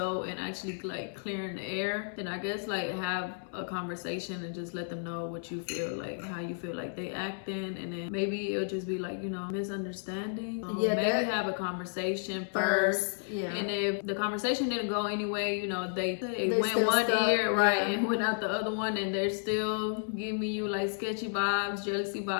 and actually like clearing the air, then I guess like have a conversation and just let them know what you feel, like how you feel like they acting, and then maybe it'll just be like, you know, misunderstanding. Yeah, maybe have a conversation first. Yeah. And if the conversation didn't go anyway, you know, they went one stuck, ear, right, yeah, and went out the other one, and they're still giving you like sketchy vibes, jealousy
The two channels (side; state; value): right; silent; 56 dB below the other